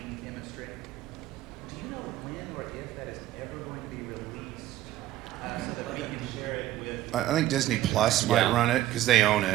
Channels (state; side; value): quieter; left; 14.2 dB